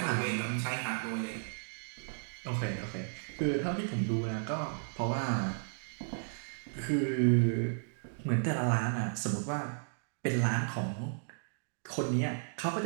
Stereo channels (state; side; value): silent; left; digital silence